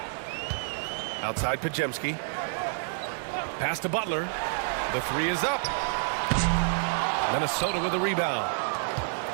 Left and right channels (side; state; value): left; silent; 59 dB below the other